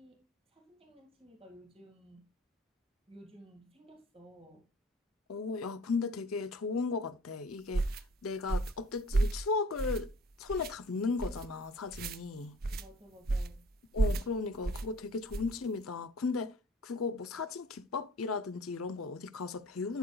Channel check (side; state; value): both; normal; correlation 0.50